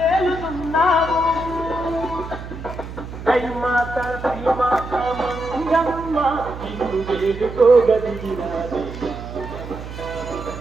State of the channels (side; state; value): right; noise; hum, 11 dB below the sound